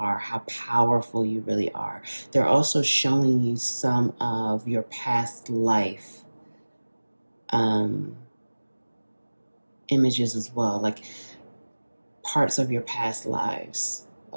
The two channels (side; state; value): both; inverted; correlation -1.00